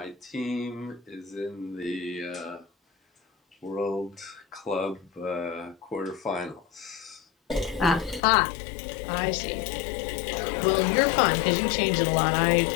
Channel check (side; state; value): right; drops out; at 8.2 s